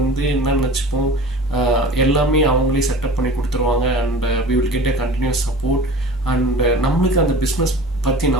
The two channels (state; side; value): normal; both; correlation 0.40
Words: என்ன நினச்சிப்போம், எல்லாமே அவங்களே செட்டப் பண்ணி கொடுத்துருவாங்க and we will get a continuous support. And நம்மளுக்கு அந்த பிஸ்னஸ் பற்றி